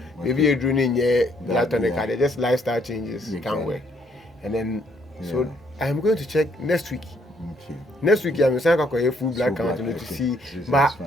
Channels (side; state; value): both; normal; correlation 0.69